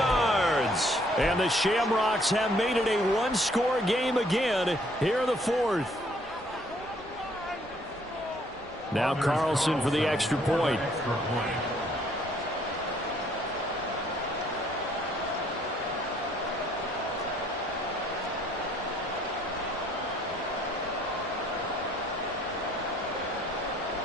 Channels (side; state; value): both; normal; correlation 0.64